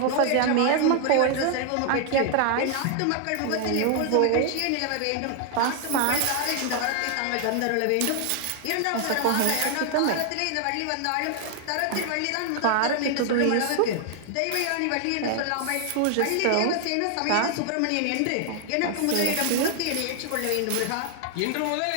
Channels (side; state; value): both; different; correlation 0.00